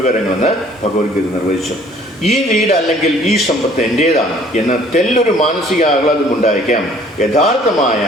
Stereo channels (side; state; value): both; normal; correlation 0.56